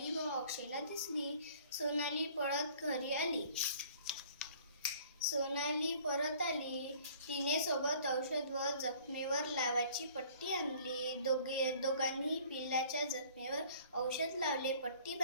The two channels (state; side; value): inverted; both; correlation -0.52